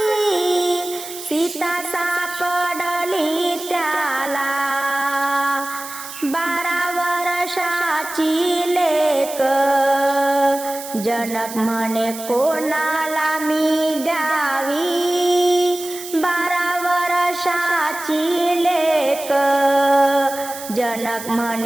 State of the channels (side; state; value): right; noise; hiss, 12 dB below the sound